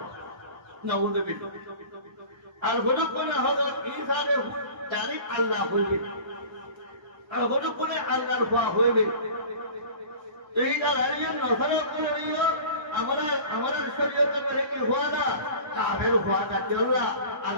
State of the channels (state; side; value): late; left; 1.3 ms